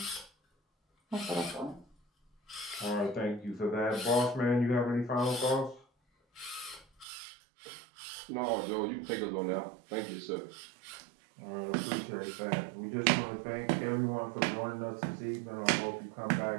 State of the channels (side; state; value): left; drops out; at 7.1 s